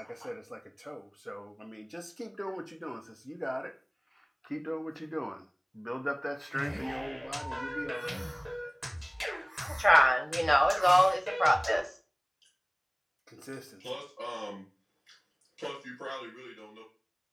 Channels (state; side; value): identical; both; correlation 1.00